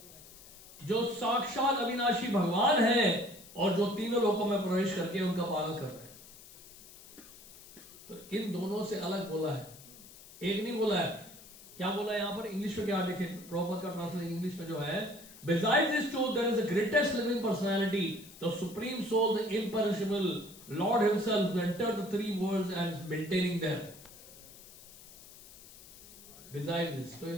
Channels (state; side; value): noise; left; hiss, 19 dB below the sound